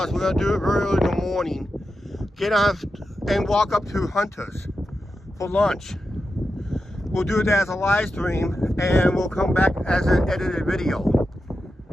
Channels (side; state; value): both; normal; correlation 0.90